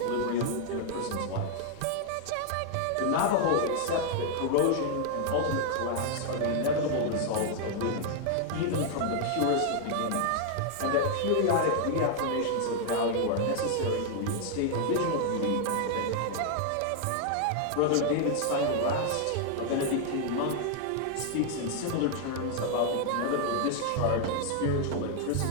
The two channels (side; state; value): both; different; correlation 0.00